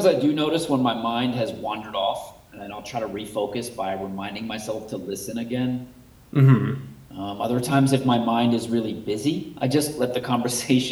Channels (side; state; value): both; identical; correlation 1.00